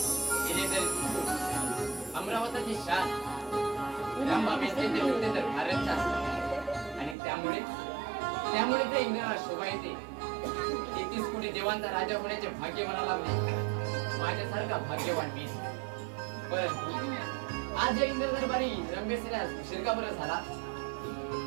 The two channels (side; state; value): left; drops out; at 7.2 s